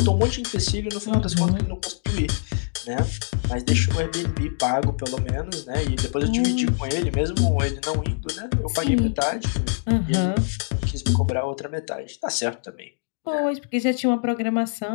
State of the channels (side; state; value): right; silent; digital silence